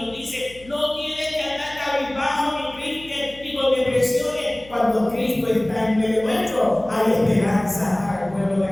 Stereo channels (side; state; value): left; noise; hum, 21 dB below the sound